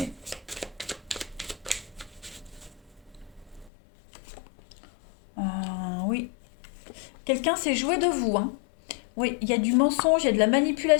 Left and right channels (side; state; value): right; drops out; at 3.7 s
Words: Oui. Quelqu'un s'est joué de vous, hein. Oui, il y a du mensonge, il y a de la